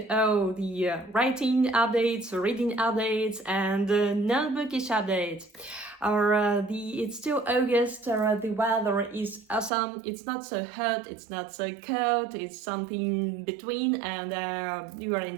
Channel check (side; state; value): left; drops out; at 9.7 s